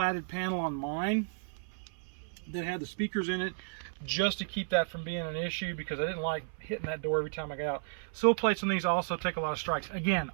panel on mine that had the speakers in it just to keep that from being an issue because I didn't like hitting that door every time I got out. Sill plates on these also take a lot of strikes. Again,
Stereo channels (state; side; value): silent; left; 56 dB below the other